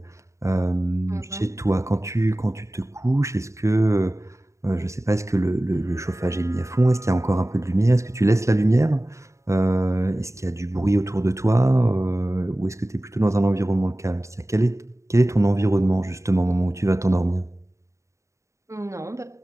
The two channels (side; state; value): left; late; 0.14 ms